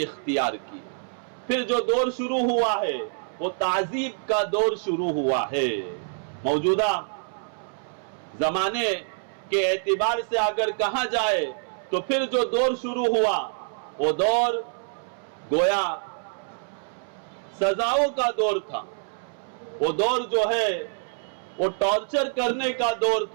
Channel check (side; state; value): left; silent; 61 dB below the other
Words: اختیار کی۔ پھر جو دور شروع ہوا ہے وہ تعذیب کا دور شروع ہوا ہے۔ موجودہ زمانے کے اعتبار سے اگر کہا جائے تو پھر جو دور شروع ہوا وہ دور گویا سزاؤں کا دور تھا، وہ دور جو ہے وہ ٹارچر کرنے کا دور